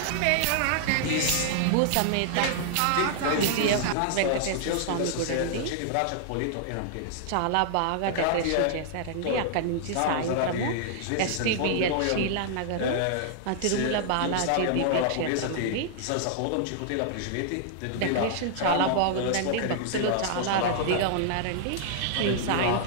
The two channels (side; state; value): both; different; correlation -0.01